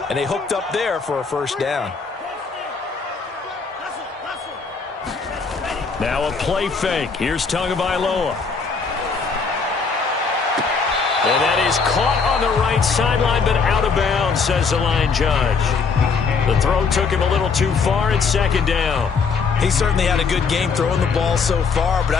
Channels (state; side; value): quieter; right; 5.1 dB